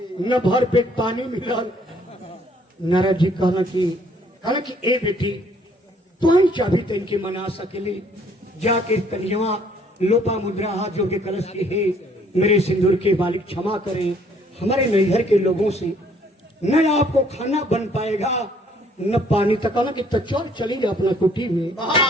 न भर पेट पानी मिलल। नारद जी कहला कि ए बेटी तू ही चाभी तन के मना सकेली। जाके कन्या लोपा मुद्रा हाथ जोड़ के कलश की हे मेरे सिंदूर के मालिक क्षमा करें, हमारे नैहर के लोगों से न आपको खाना बन पाएगा न पानी तक। कहला कि चल चली अपना कुटी में।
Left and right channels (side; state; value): both; normal; correlation 0.62